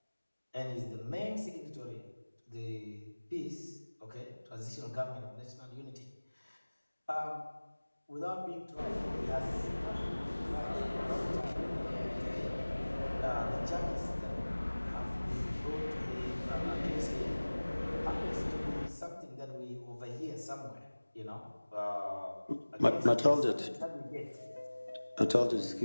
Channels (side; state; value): both; inverted; correlation -1.00